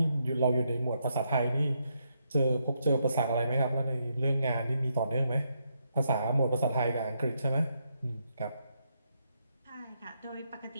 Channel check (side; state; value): both; inverted; correlation -0.79